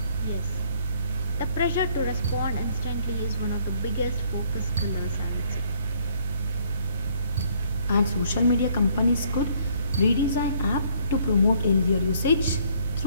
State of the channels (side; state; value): both; inverted; correlation -0.63